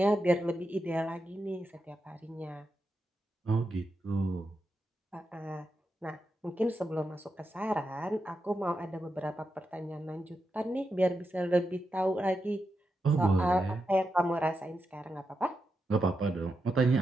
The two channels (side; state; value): both; normal; correlation 0.87